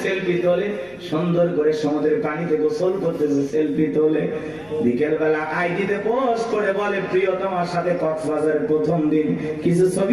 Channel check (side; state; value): right; noise; rumble, 27 dB below the sound